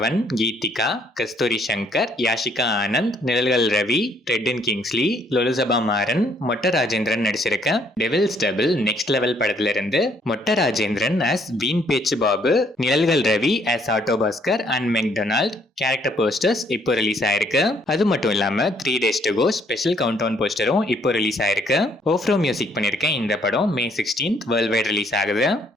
கீதிகா, கஸ்தூரி சங்கர், யாஷிகா ஆனந்த், நிழல்கள் ரவி, ரெட்டின் கிங்ஸ்லி, லொலுசபா மாறன், மொட்ட ராஜேந்திரன் நடிச்சிருக்க டெவில்ஸ் டபுள் நெக்ஸ்ட் லெவல் படத்துல இருந்து Motta Rajendran as Veen Pechu Babu, Nizhalgal Ravi as auto Bhaskar and McDonald character posters இப்போ ரிலீஸ் ஆயிருக்கு. அது மட்டும் இல்லாம 3 days to go special countdown போஸ்டரும் இப்போ ரிலீஸ் ஆயிருக்கு. ஓஃப்ரோ மியூசிக் பண்ணிருக்கேன். இந்த படம் May 16th world wide release ஆகுது.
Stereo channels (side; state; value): both; normal; correlation 0.66